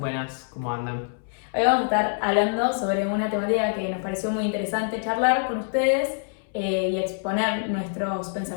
¿cómo andan? Hoy vamos a estar hablando sobre una temática que nos pareció muy interesante charlar con ustedes y exponer nuestros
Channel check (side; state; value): right; silent; 61 dB below the other